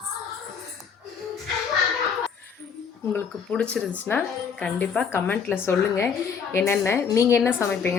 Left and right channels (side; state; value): right; quieter; 6.4 dB